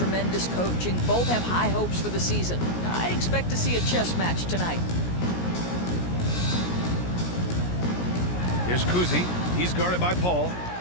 coaching. Both have high hopes for the season. I expect to see a chess match tonight. Here's Kuzi. He's guarded by Paul.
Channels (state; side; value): late; right; 17 ms